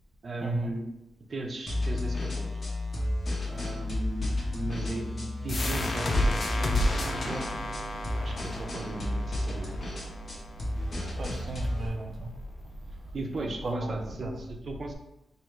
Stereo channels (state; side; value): normal; both; correlation 0.89